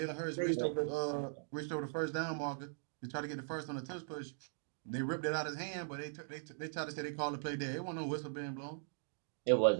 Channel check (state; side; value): silent; left; digital silence